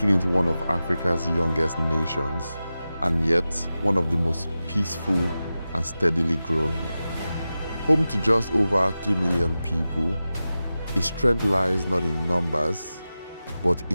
it one of Africa's youngest nations, and yet one of the most peaceful and steadily growing. Home to just over 3 million people, its strength lies not in numbers, but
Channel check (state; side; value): inverted; both; correlation -0.94